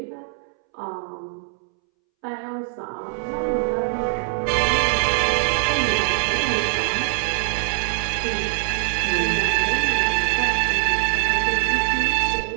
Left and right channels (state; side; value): silent; left; 64 dB below the other